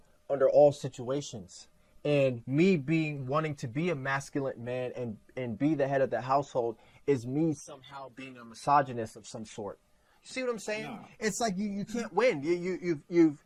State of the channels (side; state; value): both; identical; correlation 1.00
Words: under all situations. And me wanting to be a masculine man and be the head of the household is me somehow being a misogynist of some sort. You see what I'm saying? No. It's like you can't win.